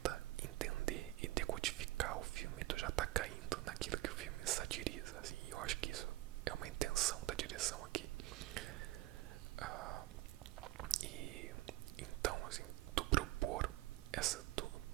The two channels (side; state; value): left; quieter; 17.7 dB